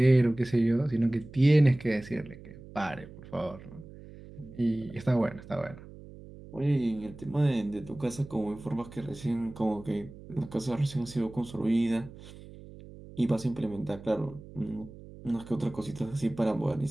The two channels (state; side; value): noise; right; hum, 17 dB below the sound